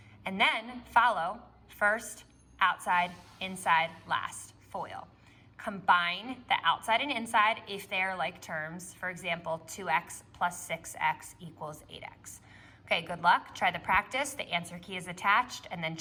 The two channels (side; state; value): both; identical; correlation 1.00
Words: And then follow first, outside, inside, last, FOIL. Combine the outside and inside if they're like terms. For example, 2x plus 6x equals 8x. Okay, good luck. Try the practice. The answer key is attached, and then